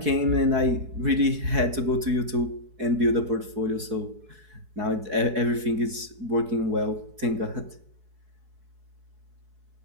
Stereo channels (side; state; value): left; late; 4.7 ms